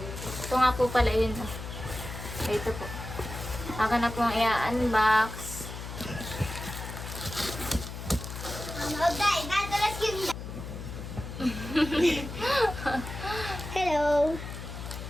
Ito nga po pala yun. Ito po. Ako na pong i-unbox. Hello.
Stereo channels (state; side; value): noise; left; hum, 9 dB below the sound